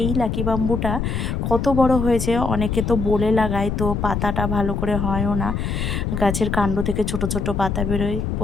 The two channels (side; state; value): left; noise; rumble, 2 dB below the sound